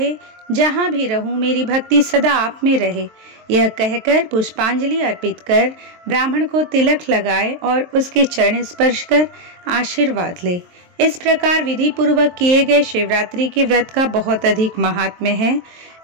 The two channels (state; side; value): late; left; 23 ms